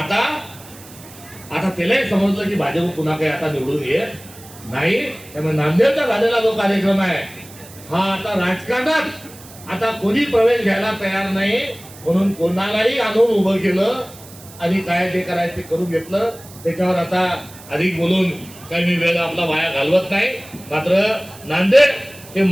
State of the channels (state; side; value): noise; right; hiss, 20 dB below the sound